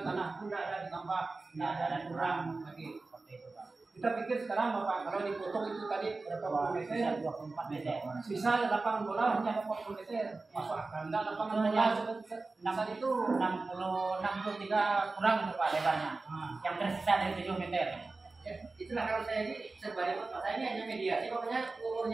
pun tidak ada ditambah, tidak ada kurang lagi seperti itu Pak. Kita pikir sekarang Bapak kalau dipotong itu tadi berapa puluh meter, 24 meter. sisa lapangan bola hanya 40 meter. Masuk akal. Enggak lapangan bola Yang itu 63 kurang itu Pak lebarnya. Yang tersisa dari 7 meter. Ya, itulah kalau saya ini sebagai Pak, saya ini hanya mediasi, pokoknya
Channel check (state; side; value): quieter; left; 3.6 dB